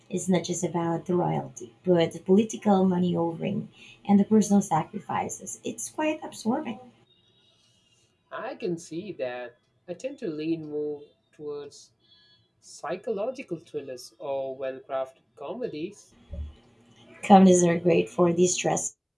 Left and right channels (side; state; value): both; identical; correlation 1.00